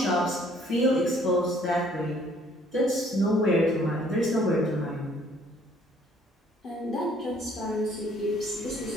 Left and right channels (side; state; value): both; normal; correlation 0.61